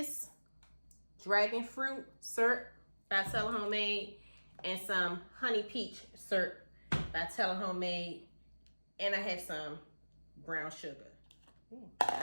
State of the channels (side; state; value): both; inverted; correlation -1.00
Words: dragon fruit syrup by Tella Homemade and some honey peach syrup by Tella Homemade, and I have some brown sugar.